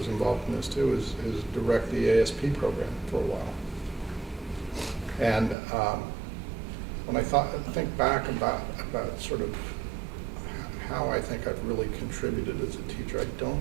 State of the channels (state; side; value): drops out; left; at 5.6 s